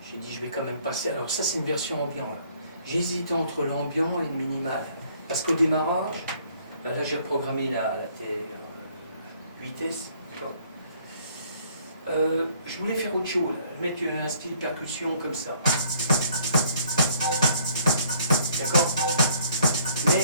j'ai dit je vais quand même passer. Alors ça c'est une version ambiant là. J'hésitais entre l'ambiant et le minimal. Parce qu'au démarrage, là j'ai reprogrammé la TR-8S. Je voulais faire autre chose, mettre un style percussion comme ça. D'accord.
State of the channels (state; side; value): inverted; both; correlation -0.61